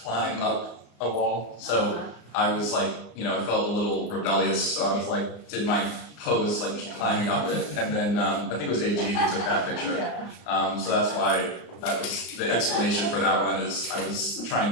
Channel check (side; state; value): right; late; 34 ms